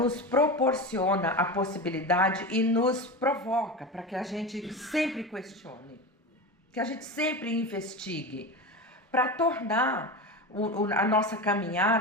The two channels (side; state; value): both; normal; correlation 0.24